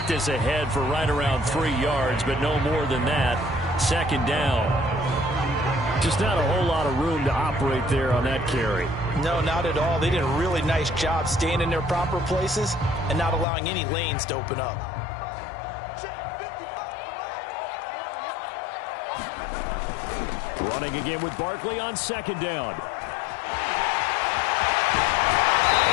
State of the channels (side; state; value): right; drops out; at 13.5 s